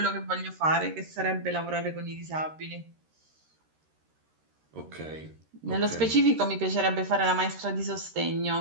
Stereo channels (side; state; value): left; late; 13 ms